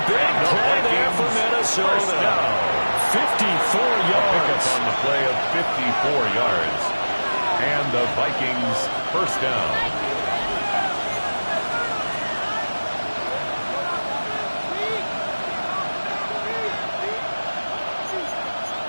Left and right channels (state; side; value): inverted; both; correlation -1.00